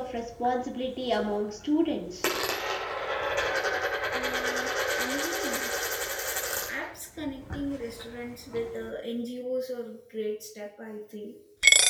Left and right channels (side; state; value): both; identical; correlation 1.00